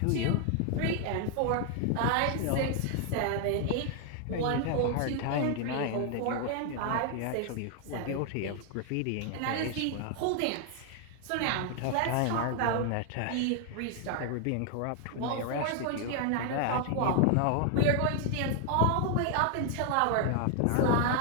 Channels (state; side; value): different; both; correlation 0.00